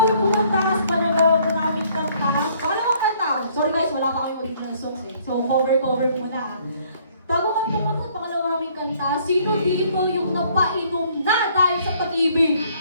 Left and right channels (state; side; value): inverted; both; correlation -0.62